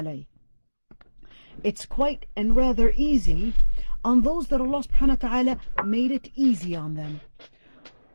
It's quite and rather easy on those that Allah subhanahu wa ta'ala made it easy on them.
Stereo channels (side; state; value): both; inverted; correlation -1.00